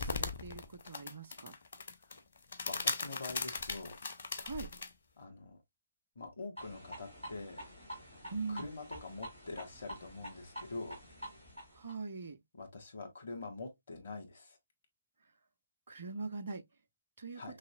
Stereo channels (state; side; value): inverted; both; correlation -0.75